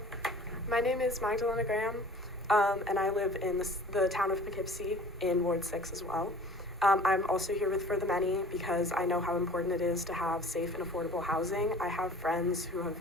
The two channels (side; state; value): both; normal; correlation 0.46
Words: my name is Magdalena Graham, and I live in the town of Poughkeepsie in Ward 6 as well. I'm also here with For the Many because I know how important it is to have safe and affordable housing. I have friends who